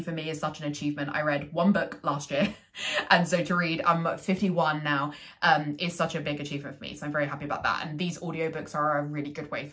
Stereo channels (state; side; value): identical; both; correlation 1.00